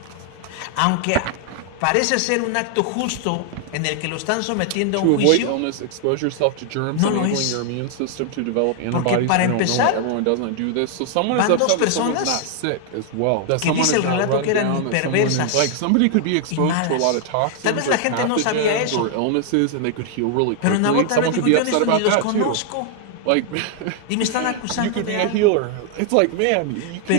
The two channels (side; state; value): both; different; correlation 0.00